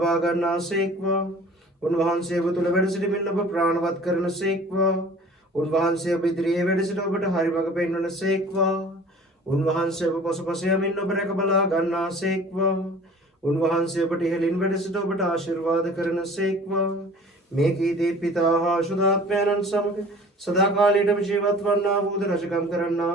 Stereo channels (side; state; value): both; normal; correlation 0.46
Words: ගන්නාසේක්වා. උන්වහන්සේ ඔබ තුළ වැඩ සිටමින් ඔබ ප්‍රාණවත් කරනසේක්වා. උන්වහන්සේ ඔබ ඉදිරියේ වැඩ සිට ඔබට හරි මඟ පෙන්වනසේක්වා. උන්වහන්සේ ඔබ පසුපස යමින් ඔබ රැක බලා ගන්නාසේක්වා. උන්වහන්සේ ඔබට ඉහළින් වැඩ සිට ඔබට ආශිර්වාද කරනසේක්වා. මේ කීදී පිතා හා ශුද්ධාත්මයන්න් සමග සදාකාලයටම ජීවත් වන්නා වූද රජකම් කරන්නා